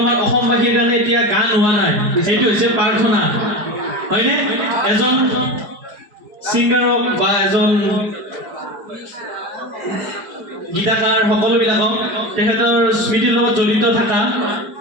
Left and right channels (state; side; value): late; left; 4.8 ms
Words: অসমবাসীৰ কাৰণে এতিয়া গান হোৱা নাই এইটো হৈছে প্ৰাৰ্থনা হয়নে এজন সিংগাৰক বা এজন গীতাকাৰ সকলোবিলাকক তেখেতৰ স্মৃতিৰ লগত জড়িত থকা